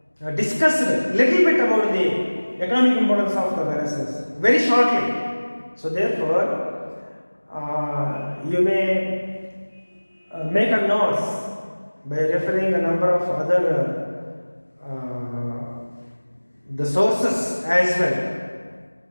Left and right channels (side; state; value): both; inverted; correlation -1.00